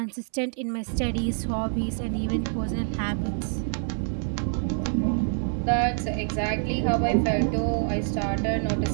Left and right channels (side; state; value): left; silent; 61 dB below the other